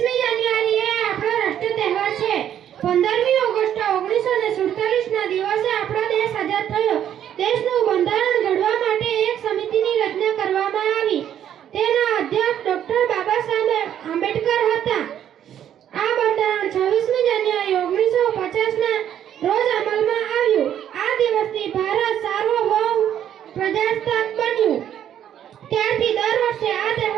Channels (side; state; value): left; quieter; 10.2 dB